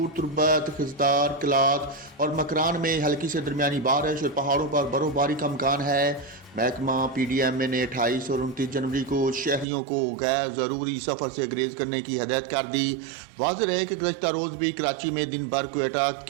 तुर्बत, खिजदार, कलात और मकरान में हल्की से दरमियानी बारिश और पहाड़ों पर बर्फबारी का इम्कान है। महकमा PDMA ने 28 और 29 जनवरी को शहरियों को गैर ज़रूरी सफ़र से गुरेज करने की हदायत कर दी। वाज़ेह है कि गुज़श्ता रोज़ भी कराची में दिन भर क्वेटा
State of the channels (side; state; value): left; drops out; at 9.7 s